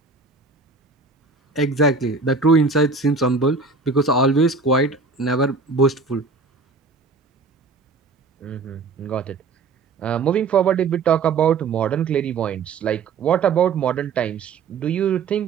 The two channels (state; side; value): quieter; left; 4.3 dB